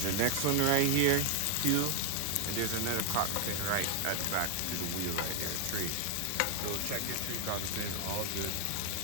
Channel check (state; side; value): different; both; correlation 0.00